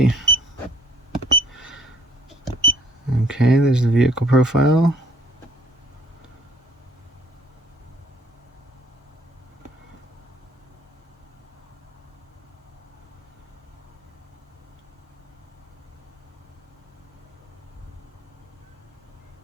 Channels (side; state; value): both; normal; correlation 0.60